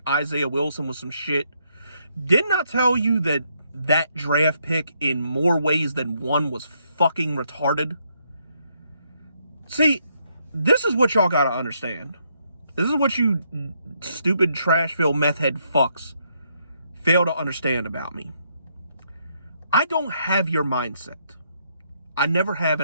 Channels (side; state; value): both; inverted; correlation -0.75